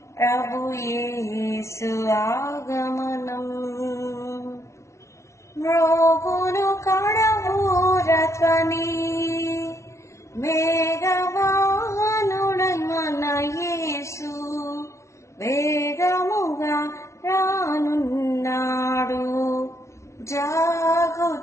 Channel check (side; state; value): right; late; 0.13 ms